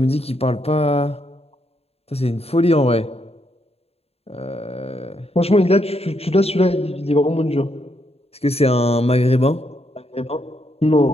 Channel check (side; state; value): right; late; 0.29 ms